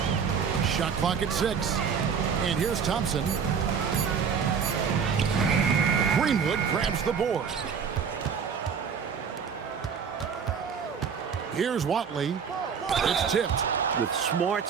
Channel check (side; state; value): left; quieter; 6.6 dB